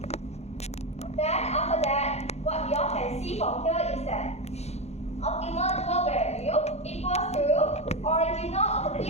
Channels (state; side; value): late; right; 0.31 ms